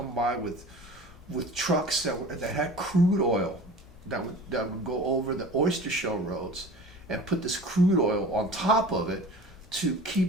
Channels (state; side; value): normal; both; correlation 0.40